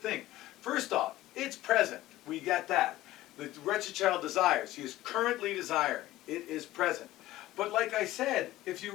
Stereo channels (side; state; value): right; quieter; 16.0 dB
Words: First off, it's present. We get that. The wretched child desires. He is currently desiring. It is present. But like I said, if